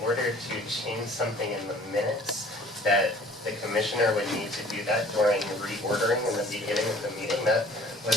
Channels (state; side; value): normal; both; correlation 0.51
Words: order to change something in the minutes, that the commissioner would need to do that during reordering in the beginning of the meeting? That